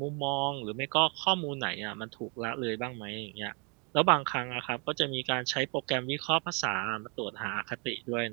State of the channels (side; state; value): left; quieter; 35.4 dB